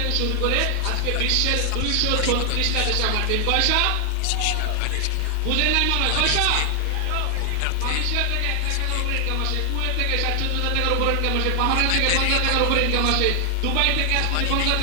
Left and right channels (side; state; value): both; different; correlation 0.00